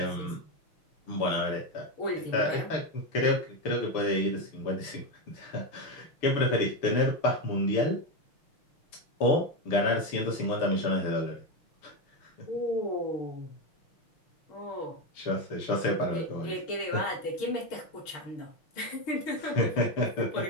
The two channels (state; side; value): late; right; 6.7 ms